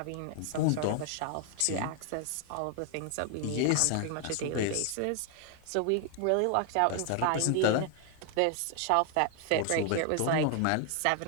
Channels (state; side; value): different; both; correlation 0.00